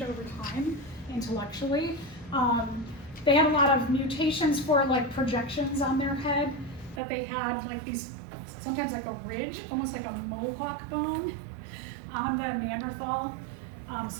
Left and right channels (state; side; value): drops out; left; at 7.0 s